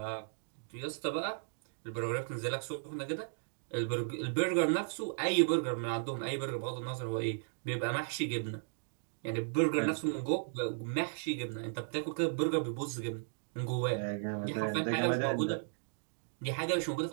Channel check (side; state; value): left; silent; digital silence